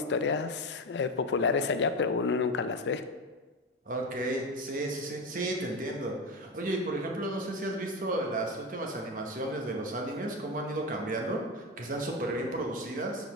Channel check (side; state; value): both; normal; correlation 0.18